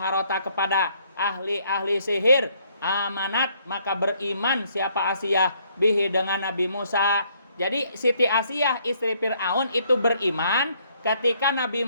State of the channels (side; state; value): both; inverted; correlation -0.67